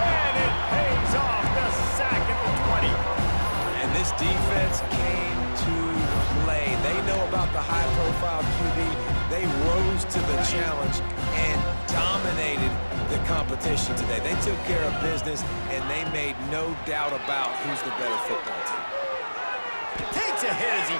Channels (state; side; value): inverted; both; correlation -1.00